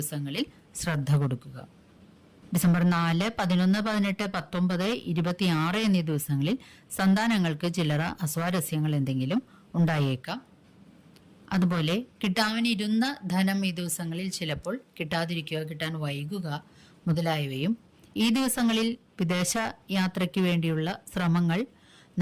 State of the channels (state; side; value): identical; both; correlation 1.00